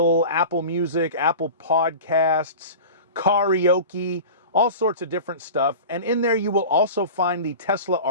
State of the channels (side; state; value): both; inverted; correlation -0.34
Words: Apple Music, Apple Podcasts, karaoke, all sorts of different stuff. And in there you will also find the Tesla